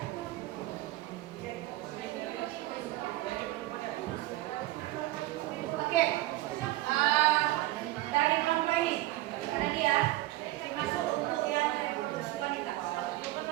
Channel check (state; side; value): quieter; left; 17.4 dB